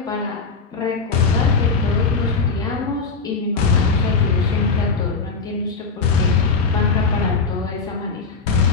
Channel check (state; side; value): quieter; right; 4.6 dB